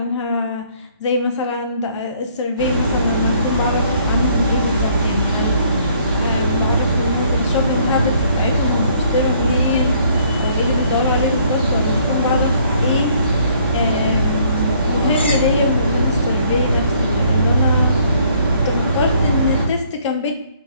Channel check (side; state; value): both; inverted; correlation -0.63